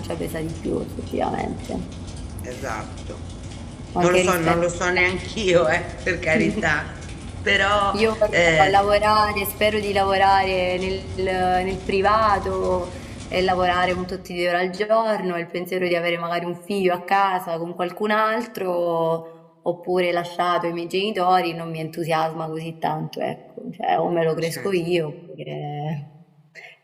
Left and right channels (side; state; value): both; identical; correlation 1.00